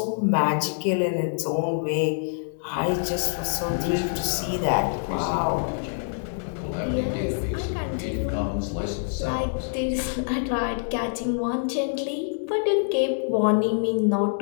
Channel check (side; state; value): right; silent; digital silence